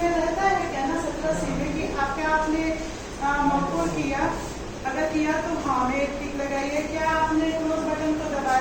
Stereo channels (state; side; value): identical; both; correlation 1.00